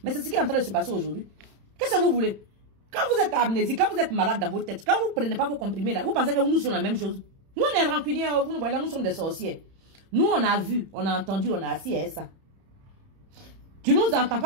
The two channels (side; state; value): left; late; 31 ms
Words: Mais c'est ce qui est en train de se passer aujourd'hui. Qu'est-ce que vous voulez? Quand vous êtes amnésique, quand vous êtes malade dans vos têtes, quand vous ne prenez pas vos comprimés là, vous pensez que nous sommes la même chose. Nous on est rancuniers, vous nous voyez là, nous sommes des sorciers. Nous on a vu, on a entendu, on a assis à ça. Tu nous entends